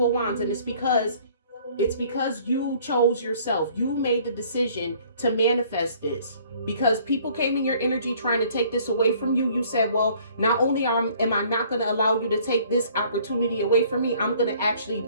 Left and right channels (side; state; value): both; inverted; correlation -0.57